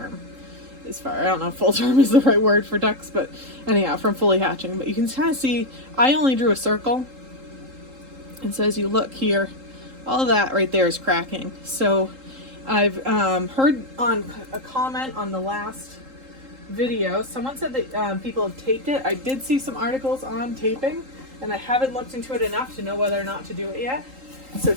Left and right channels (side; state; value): left; late; 3.8 ms